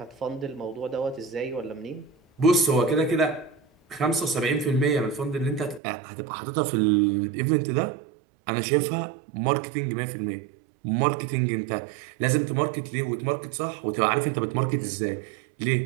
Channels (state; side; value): drops out; left; at 5.8 s